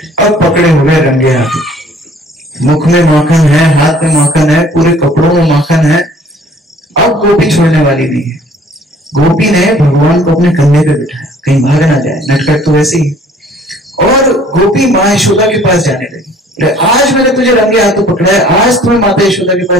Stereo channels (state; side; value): normal; both; correlation 0.55